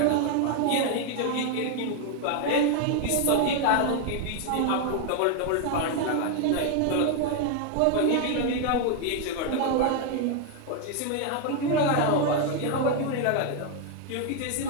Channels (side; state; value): both; different; correlation 0.01